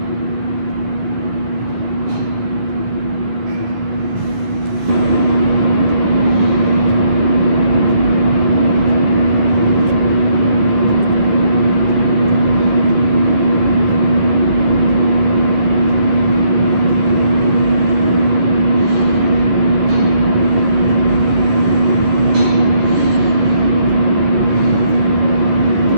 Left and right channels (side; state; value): left; late; 11 ms